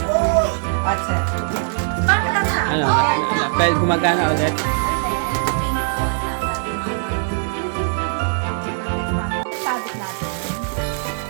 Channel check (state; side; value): silent; left; 65 dB below the other